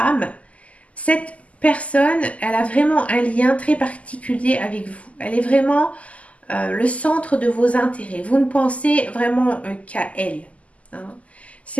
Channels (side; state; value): right; late; 0.068 ms